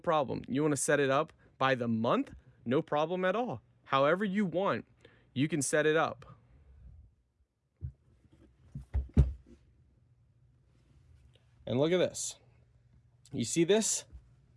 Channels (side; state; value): both; identical; correlation 1.00